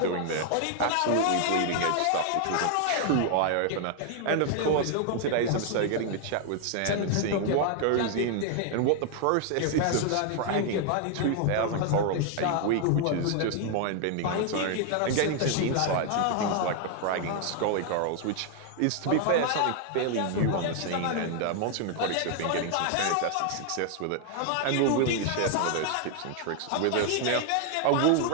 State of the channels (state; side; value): different; both; correlation 0.00